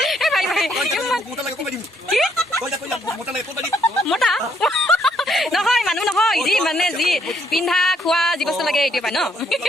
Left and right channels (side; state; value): both; normal; correlation 0.71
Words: মোটা নহয় মানুহ নহয় যি মানে যি পিন্ধা খোৱা যি বস্তু লাগে এইটো পাই ন